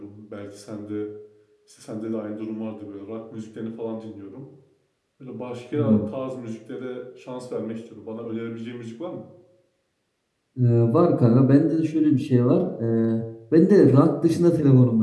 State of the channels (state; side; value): identical; both; correlation 1.00